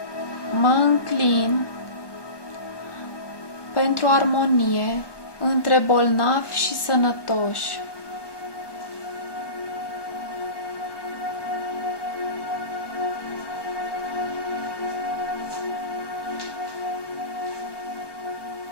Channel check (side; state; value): right; late; 1.2 ms